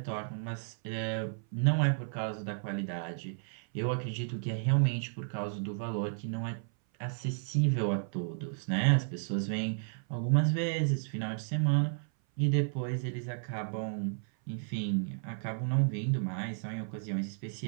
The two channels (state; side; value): silent; left; 56 dB below the other